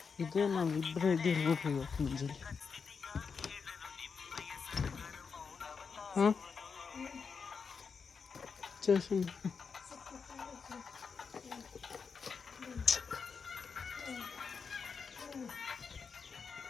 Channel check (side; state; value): right; quieter; 5.6 dB